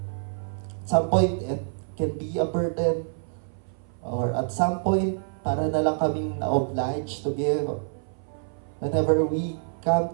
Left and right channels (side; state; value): left; silent; 57 dB below the other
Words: At some point, it can be a burden. Or at some point, para na lang kaming na-obliged to give. Whenever we